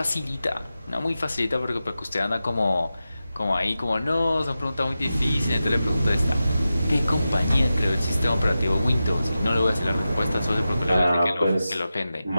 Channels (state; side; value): inverted; both; correlation -0.92